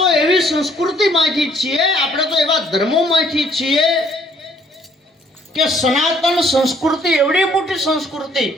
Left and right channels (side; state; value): both; normal; correlation 0.64